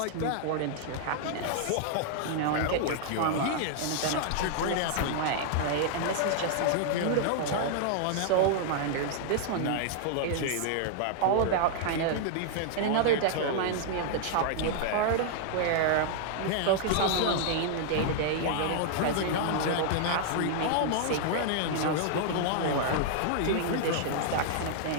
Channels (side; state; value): both; different; correlation -0.01